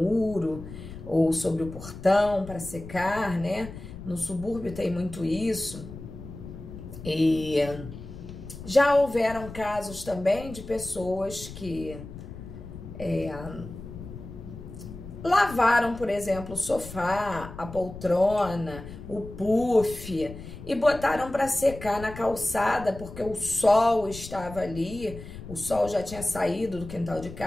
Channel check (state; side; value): noise; left; rumble, 13 dB below the sound